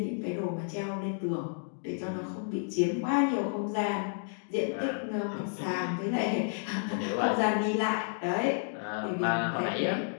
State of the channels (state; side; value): silent; right; digital silence